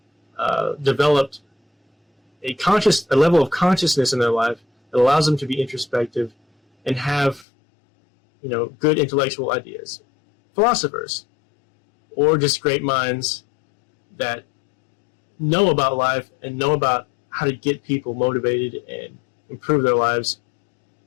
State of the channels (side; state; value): right; drops out; at 7.5 s